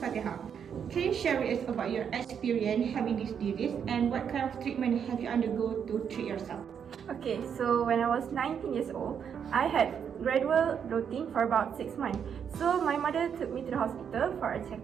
can you share with us about your experience having this disease and what kind of treatment have you undergone to treat yourself? Okay, so when I was 19 years old, I had gradual bloating for about 6 months. So my mother took me to the hospital for a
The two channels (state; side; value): quieter; left; 7.7 dB